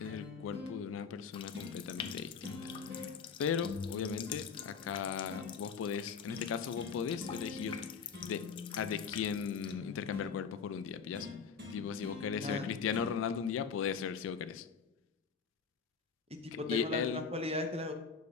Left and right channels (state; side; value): quieter; right; 6.0 dB